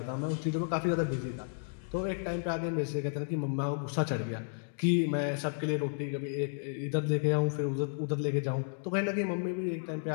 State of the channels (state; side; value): silent; right; digital silence